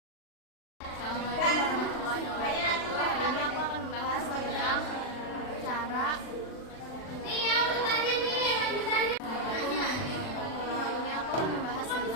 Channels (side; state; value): right; late; 39 ms